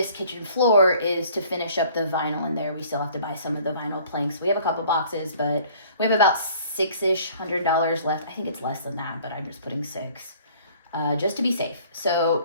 kitchen floor is to finish up the vinyl in there. We still have to buy some of the vinyl planks. We have a couple boxes, but we have about $600 left. I think it's less than that, but I'm just putting $6. Just to be safe.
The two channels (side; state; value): both; inverted; correlation -0.53